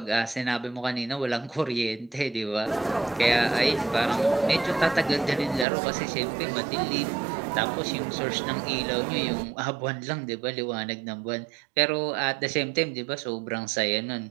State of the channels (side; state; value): left; drops out; at 5.7 s